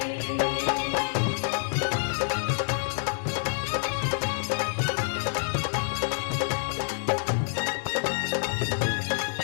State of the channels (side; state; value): right; silent; digital silence